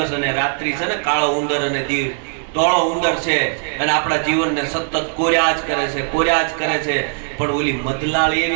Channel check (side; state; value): left; silent; 55 dB below the other